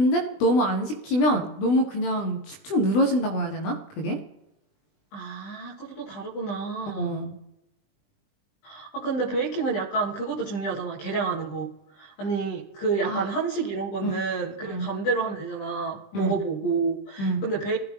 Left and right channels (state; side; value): late; right; 20 ms